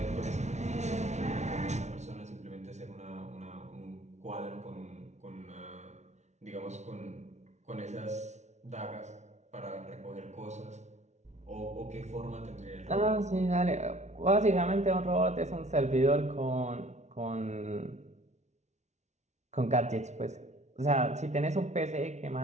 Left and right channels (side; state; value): left; late; 0.33 ms